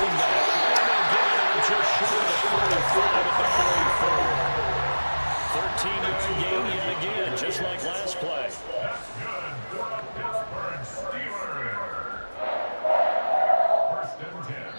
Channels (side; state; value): both; inverted; correlation -1.00